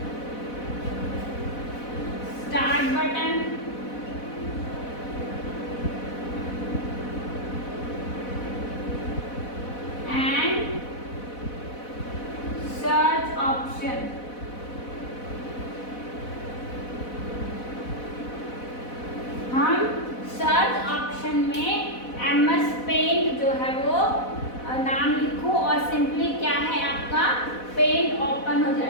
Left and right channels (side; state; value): right; late; 4.1 ms